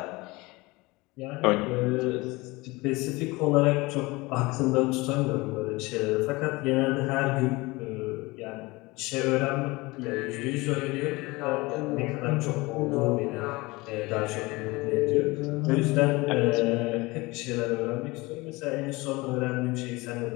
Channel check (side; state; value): right; quieter; 23.0 dB